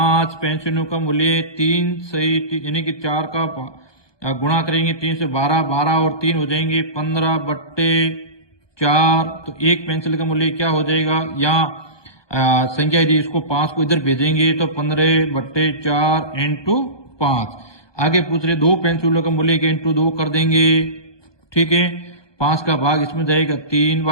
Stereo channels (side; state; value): right; late; 1.2 ms